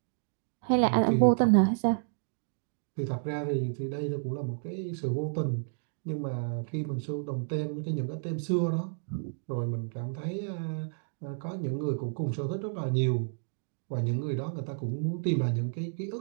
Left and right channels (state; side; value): silent; left; digital silence